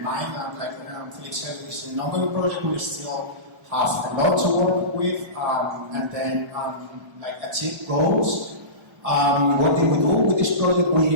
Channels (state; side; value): late; left; 1.3 ms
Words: mind. And like Felix said, this is an ongoing project. We still have a lot to work with, and then like achieve goals. What did we do with this project?